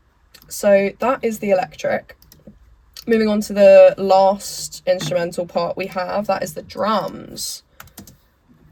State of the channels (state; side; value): identical; both; correlation 1.00